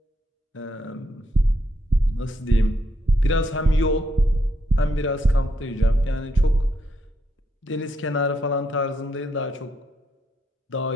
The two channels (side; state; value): both; normal; correlation 0.78